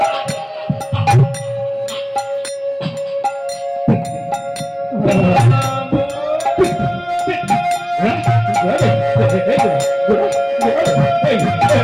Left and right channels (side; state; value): both; identical; correlation 1.00